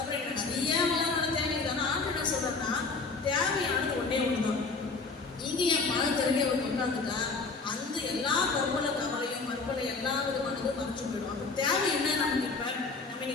நிறைய வளமான தேவை இருக்குது. ஆனால் ஆண்டு என்ன சொல்றதுன்னா தேவையானது ஒன்றே ஒன்றுதான். இங்கே என் பணம் தெரிஞ்ச ஒரு உட்காந்துட்டா அந்த எல்லா கவலையும் மறுபலை எல்லா விதமானதும் மறைச்சு போயிடும். அப்போ தேவை என்ன நமக்கு? இப்போ நம்ம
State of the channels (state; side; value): quieter; right; 4.2 dB